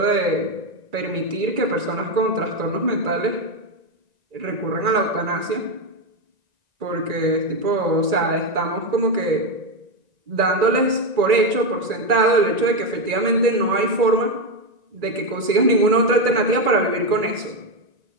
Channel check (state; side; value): late; left; 1.9 ms